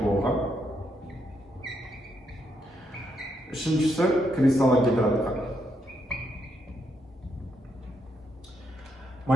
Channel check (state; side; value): normal; both; correlation 0.78